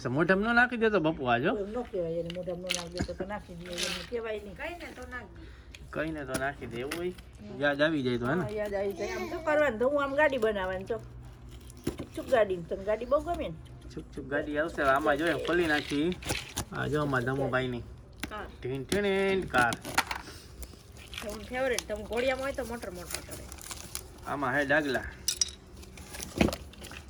મોઢામાં ન નાખી દેતો બપુ આજો ન કહેવાય એને મોઢામાં ન નાખી દેતો તો નાખી દે એને કહેવાય નહીં કઈને તો નાખી દે એવું હોય યાદ આવી જાય તો હે ને હા, યાદ આવી જાય આમ તો કરવાનું તો હું આમ ગાડી બનાવવાની તો ચૂપ ગાડી તને ગાડી બહુ ગમે ને છુક છુક ગાડી આવશે આમાં જોઈએ ખોલી નાખી આ જો અમારા ધમુભાઈની ટીન ટીન કાર તમે ફેવરેટ તમે ઘોડિયામાં હોય તો મોટર મોટર કરે આમાં હે ડાગલા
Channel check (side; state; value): both; identical; correlation 1.00